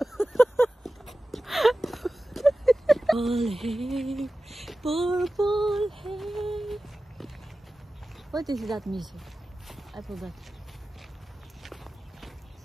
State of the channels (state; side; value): normal; both; correlation 0.95